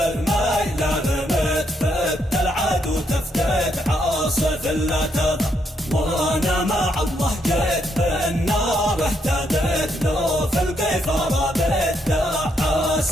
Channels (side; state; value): both; normal; correlation 0.76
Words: رميت فت العدو تفتت عاصف لا تضر. وانا مع الله جيت بالنار اهتديت لو في القيفر بيت